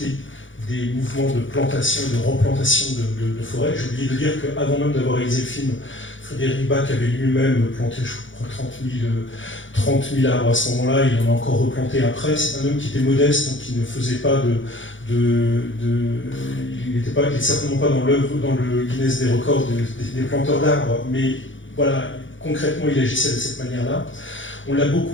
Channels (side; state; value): right; late; 0.56 ms